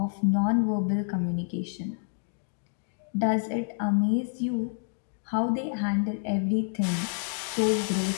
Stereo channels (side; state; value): right; silent; digital silence